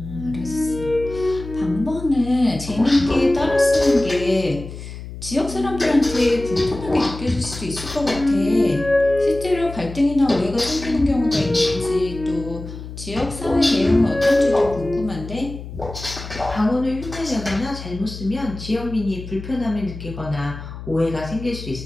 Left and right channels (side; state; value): left; noise; hum, 11 dB below the sound